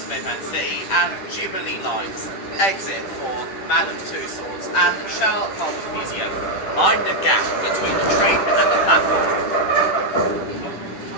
and City and Jubilee lines. Exit for Madame Tussauds and Sherlock Holmes Museum. Mind the gap between the train and the platform.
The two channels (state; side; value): late; right; 10 ms